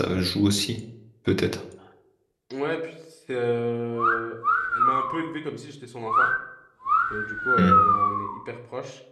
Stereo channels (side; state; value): both; identical; correlation 1.00